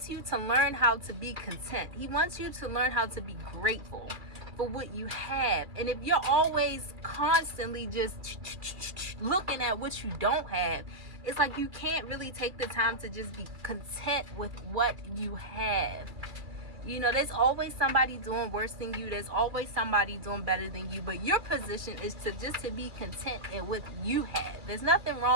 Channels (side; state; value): left; late; 2.3 ms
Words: you to learn how to be content. He wants you to learn how to be grateful for what you have. And if you're always constantly just looking at what you don't have, it's like you can't really take the time to just be content with what you have. You know, there's always somebody doing worse than you. There's always somebody doing better than you. But your position is to be content in what you have. There's nothing